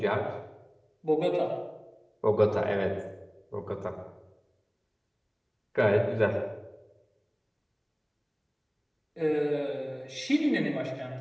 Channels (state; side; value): identical; both; correlation 1.00